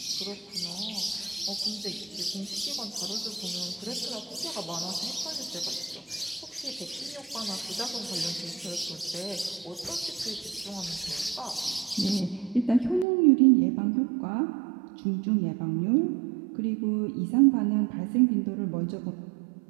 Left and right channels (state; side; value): drops out; left; at 13.1 s